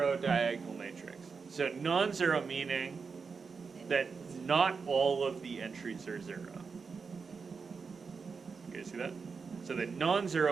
diagonal matrix. So non-zero meaning that not all of the entries are 0. You guys see that? So the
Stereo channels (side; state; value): left; quieter; 5.2 dB